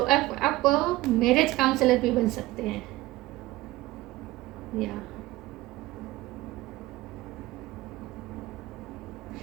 मैरिज काउंसलर भी बन सकते हैं, या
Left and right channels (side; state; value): left; quieter; 18.2 dB